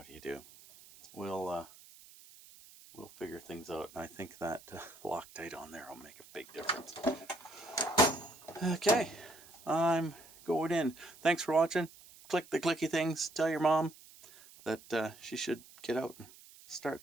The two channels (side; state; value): right; noise; hiss, 21 dB below the sound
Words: do you do? We'll figure things out, and I think that Loctite on there will make a big difference. Okay, I'm going in. Thanks for watching. Click the clicky things. Tell your mom that she should get out and